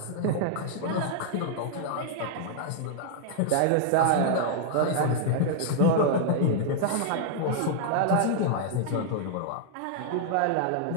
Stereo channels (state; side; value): different; both; correlation -0.01